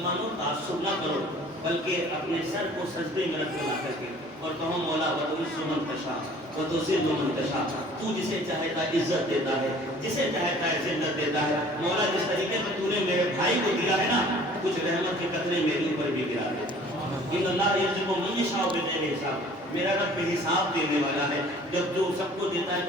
تعصب نہ کرو، بلکہ اپنے سر کو سجدے میں رکھ لا کر کے اور کہو مولا وَتُعِزُّ مَن تَشَاءُ وَتُذِلُّ مَن تَشَاءُ، تو جسے چاہتا ہے عزت دیتا ہے، جسے چاہتا ہے ذلت دیتا ہے۔ مولا جس طریقے سے تو نے میرے بھائی کو دیا ہے نا، کچھ رحمت کے قطرے میرے اوپر بھی گرا دے۔ ان اللہ یرزق من یشاء بغیر حساب، میرا رب بے حساب دینے والا ہے، جب جو سب کو دیتا ہے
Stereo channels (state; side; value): normal; both; correlation 0.50